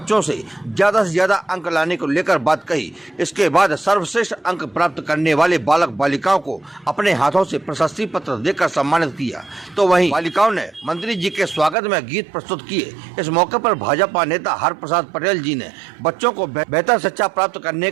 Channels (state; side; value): drops out; left; at 11.8 s